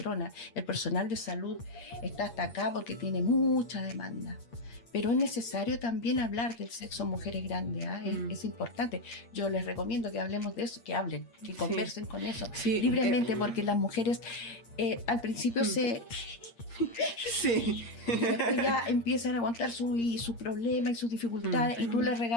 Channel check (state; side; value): late; right; 8.6 ms